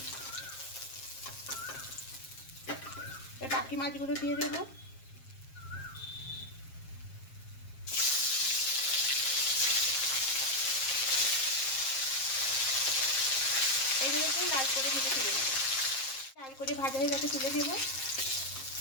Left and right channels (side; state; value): right; late; 7.5 ms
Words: বাকি মাছগুলো দিয়ে দেবো। এইগুলোকে লাল করে ভেজে তুলে নেব। লাল করে ভাজা হয়ে গেছে, তুলে নেব।